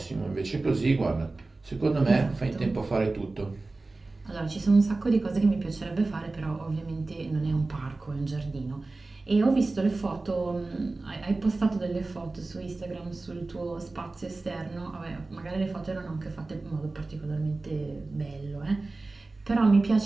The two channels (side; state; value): left; quieter; 3.3 dB